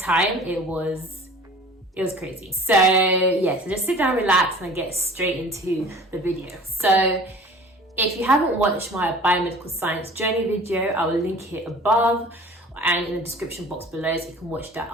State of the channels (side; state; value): both; normal; correlation 0.45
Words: it was crazy. So yeah, so just sit down, relax, and get straight into the video. So if you haven't watched my biomedical science journey video, I will link it above and in the description box below, so you can watch that